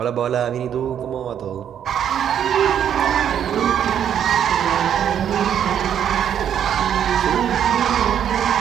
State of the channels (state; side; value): quieter; left; 9.3 dB